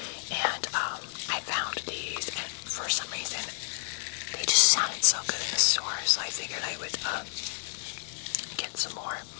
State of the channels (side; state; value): right; silent; digital silence